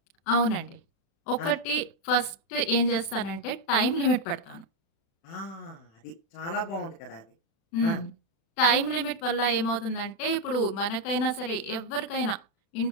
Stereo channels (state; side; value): late; right; 36 ms